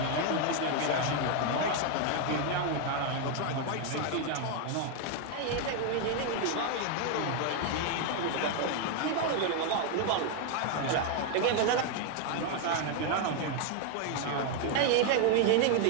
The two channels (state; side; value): different; both; correlation 0.00